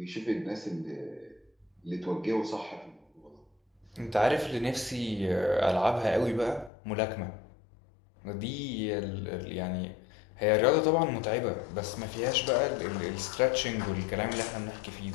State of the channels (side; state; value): right; drops out; at 6.7 s